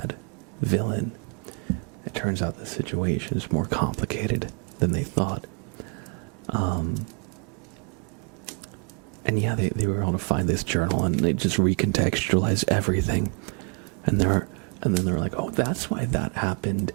villain. It turns out the situation is more complicated than they thought. And yeah, they were able to find this journal and they just recontextualize everything. And then they're like, oh, that's why that happened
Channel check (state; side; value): quieter; left; 39.9 dB